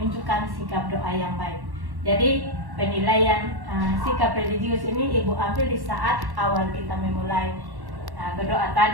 sikap doa yang baik. Jadi penilaian sikap religius ini Ibu ambil di saat awal kita memulai berdoa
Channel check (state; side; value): late; left; 1.1 ms